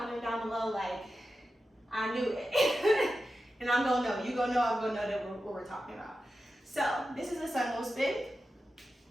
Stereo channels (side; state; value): both; normal; correlation 0.92